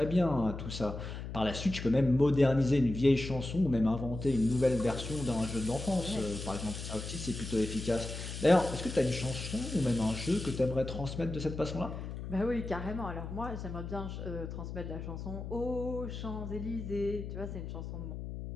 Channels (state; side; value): noise; left; hum, 7 dB below the sound